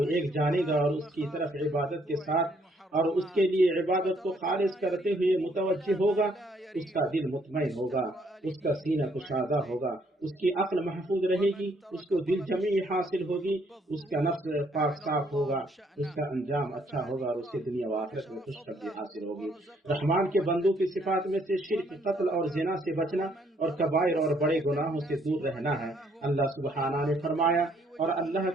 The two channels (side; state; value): both; normal; correlation 0.68